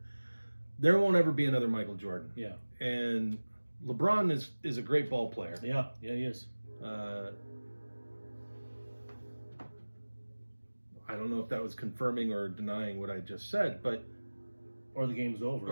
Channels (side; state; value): both; inverted; correlation -1.00